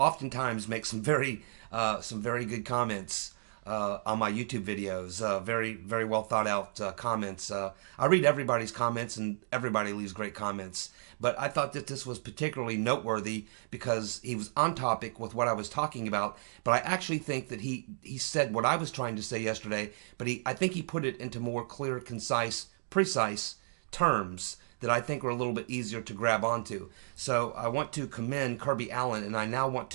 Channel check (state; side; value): silent; left; digital silence